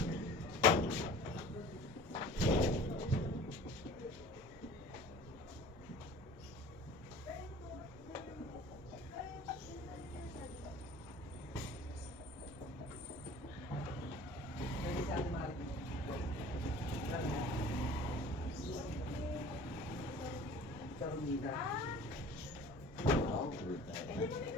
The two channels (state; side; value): normal; both; correlation 0.44